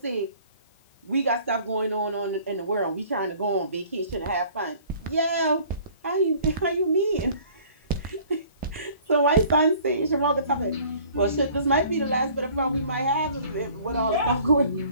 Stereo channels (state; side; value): inverted; both; correlation -0.52